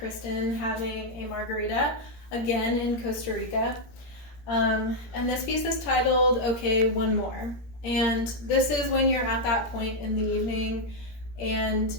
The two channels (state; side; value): late; right; 17 ms